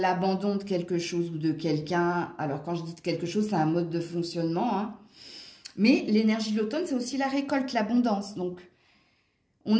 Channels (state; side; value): identical; both; correlation 1.00